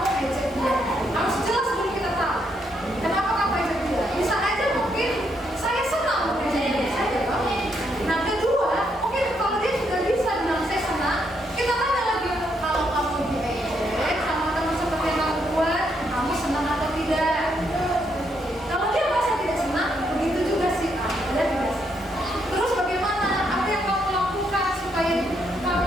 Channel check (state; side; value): normal; both; correlation 0.76